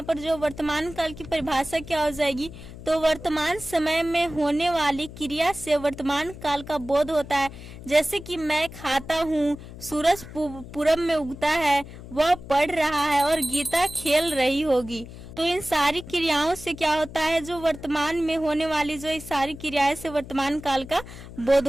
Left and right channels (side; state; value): left; noise; hum, 14 dB below the sound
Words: पर जो वर्तमान काल की परिभाषा क्या हो जाएगी, तो वर्तमान समय में होने वाली क्रिया से वर्तमान काल का बोध होता है। जैसे कि मैं खाता हूँ, सूरज पूरब में उगता है, वह पढ़ रहा है और गीता खेल रही होगी। तो इन सारी क्रियाओं से क्या होता है, जो वर्तमान में होने वाली जो इस सारी क्रियाएं से वर्तमान काल का बोध